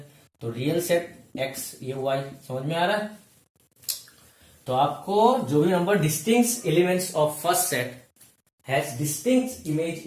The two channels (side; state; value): both; identical; correlation 1.00